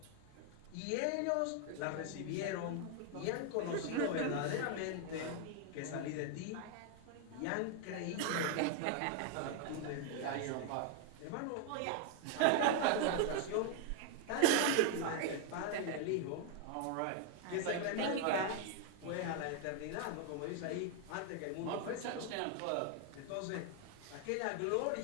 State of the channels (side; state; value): both; different; correlation 0.00